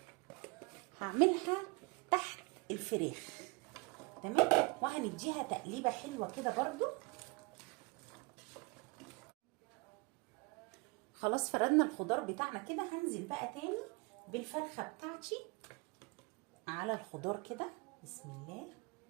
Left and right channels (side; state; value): left; quieter; 27.8 dB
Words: هعملها تحت الفراخ. تمام. وهنديها تقليبه حلوه كده برضو. خلاص فردنا الخضار بتاعنا كده، هنزل بقى تاني بالفرخه بتاعتي على الخضار كده. بسم الله.